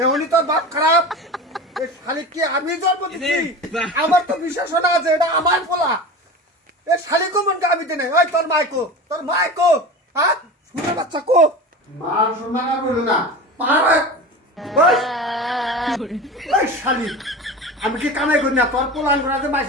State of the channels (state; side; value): normal; both; correlation 0.31